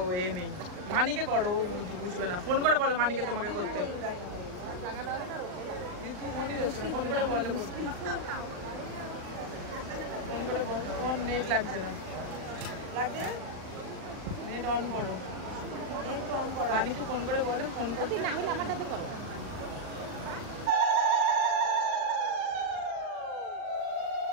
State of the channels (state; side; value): late; left; 39 ms